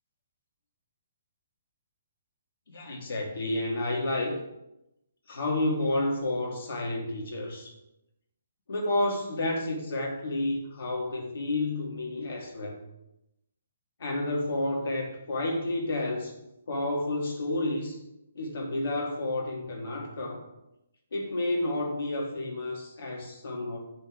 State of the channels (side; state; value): both; inverted; correlation -0.76